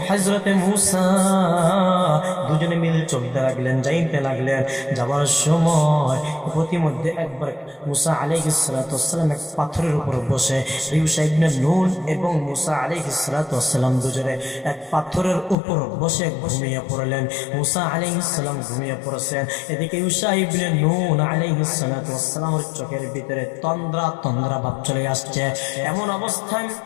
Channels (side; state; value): right; drops out; at 15.6 s